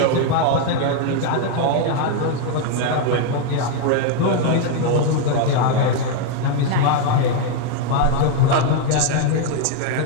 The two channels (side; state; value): both; different; correlation 0.00